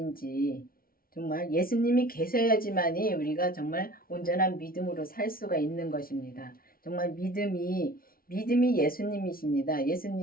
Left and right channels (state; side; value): late; right; 0.43 ms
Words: 정말 예수님이 계셔야지만이 우리가 정말 온전한 믿음으로 살 수가 있는 것입니다. 정말 믿음이 예수님이십니다.